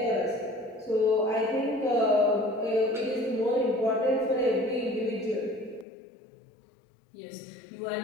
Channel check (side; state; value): right; drops out; at 5.9 s